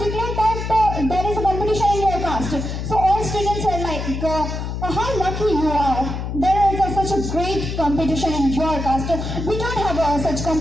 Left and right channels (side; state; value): left; noise; hum, 4 dB below the sound